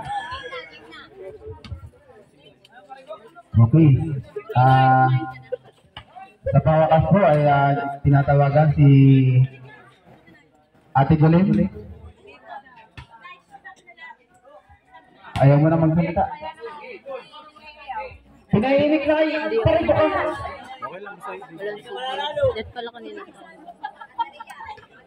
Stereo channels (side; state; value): both; identical; correlation 1.00